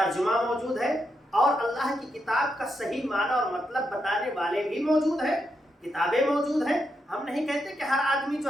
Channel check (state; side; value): normal; both; correlation 0.83